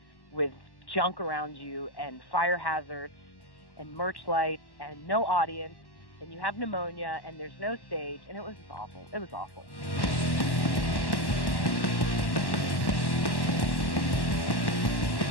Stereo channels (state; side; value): late; right; 1.1 ms